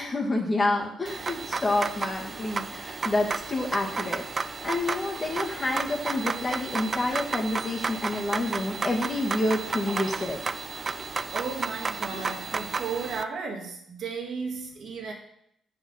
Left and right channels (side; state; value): both; normal; correlation 0.86